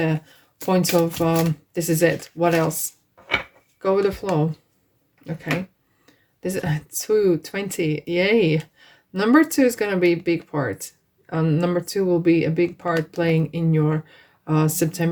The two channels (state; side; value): identical; both; correlation 1.00